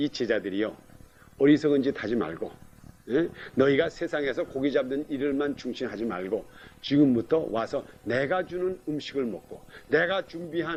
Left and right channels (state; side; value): identical; both; correlation 1.00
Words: 제자들이요. 어리석은 짓 하지 말고 너희가 세상에서 고기 잡는 일을만 중심하지 말고 지금부터 와서 내가 주는 음식을 먹고 내가